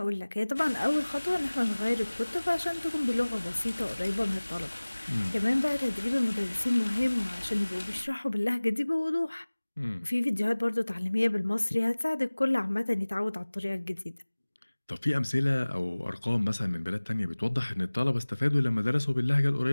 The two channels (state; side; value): inverted; both; correlation -1.00